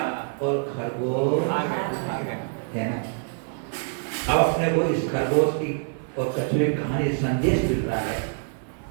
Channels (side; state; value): left; silent; 57 dB below the other